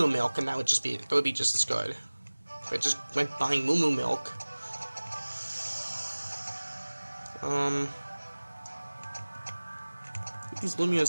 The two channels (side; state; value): both; inverted; correlation -1.00